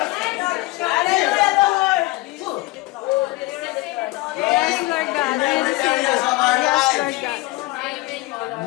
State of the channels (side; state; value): right; quieter; 20.4 dB